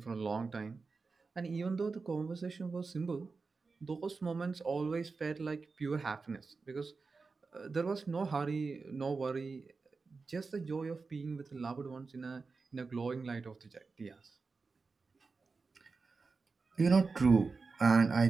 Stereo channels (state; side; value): quieter; left; 4.4 dB